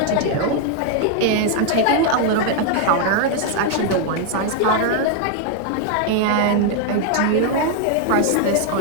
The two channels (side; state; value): both; different; correlation 0.01